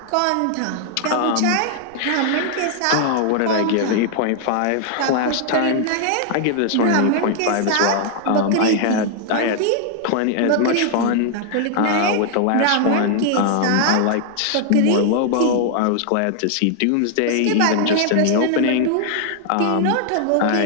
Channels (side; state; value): both; different; correlation 0.00